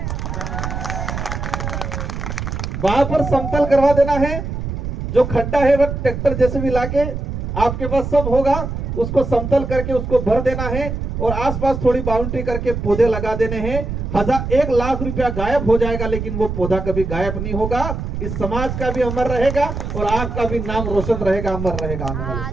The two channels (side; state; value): right; noise; rumble, 4 dB below the sound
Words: वहां पर समतल करवा देना है। जो खड्डा है वह ट्रैक्टर जैसे भी लाके आपके पास सब होगा, उसको समतल करके उसको भर देना है और आसपास थोड़ी बाउंड्री करके पौधे लगा देने हैं। 1 लाख रुपया गायब हो जाएगा, लेकिन वो पौधा कभी गायब नहीं होगा। इस समाज का भी अमर रहेगा और आपका भी नाम रोशन रहेगा, अमर रहेगा आने वाले